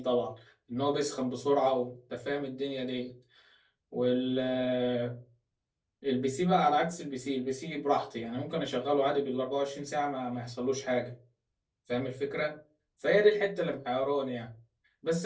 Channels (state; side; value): identical; both; correlation 1.00